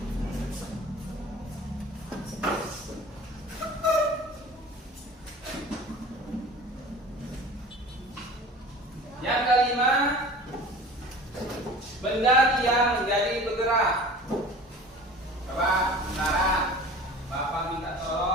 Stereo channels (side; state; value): both; normal; correlation 0.41